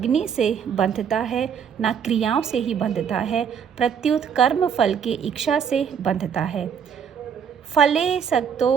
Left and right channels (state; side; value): quieter; left; 7.5 dB